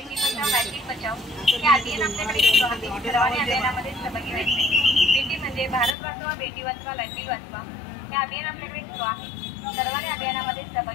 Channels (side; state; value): right; drops out; at 6.0 s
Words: बेटी म्हणजे भारत वाचवा, बेटी वाचवा, लाडली वाचवा हे अभियान आपल्याकडे सुरू आहे. सर्वांनी अभियानामध्ये